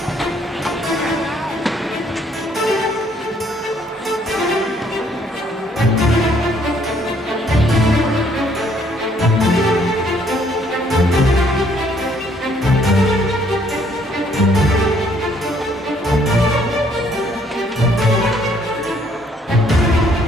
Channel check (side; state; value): both; normal; correlation 0.65